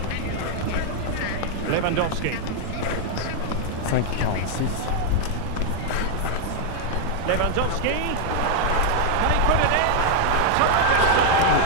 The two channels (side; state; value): both; different; correlation 0.00